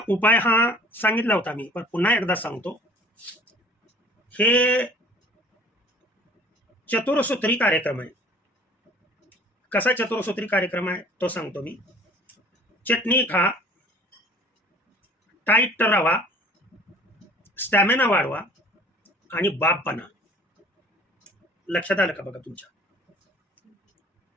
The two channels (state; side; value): normal; both; correlation 0.50